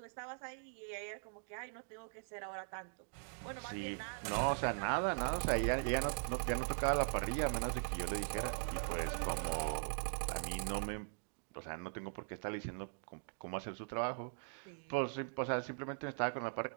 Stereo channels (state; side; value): silent; left; digital silence